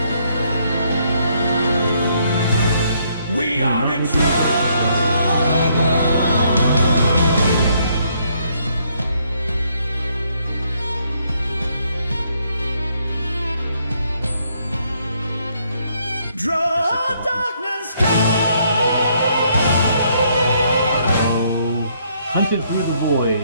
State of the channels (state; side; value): inverted; both; correlation -0.70